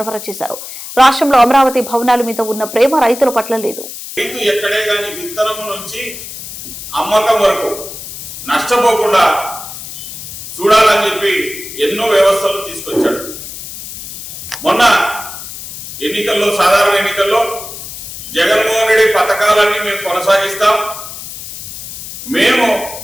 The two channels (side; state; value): left; noise; hiss, 11 dB below the sound